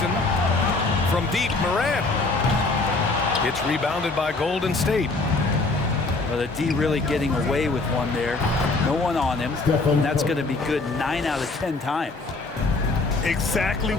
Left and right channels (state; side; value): quieter; right; 3.5 dB